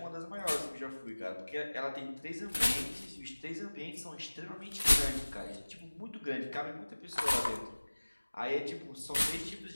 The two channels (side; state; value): both; inverted; correlation -1.00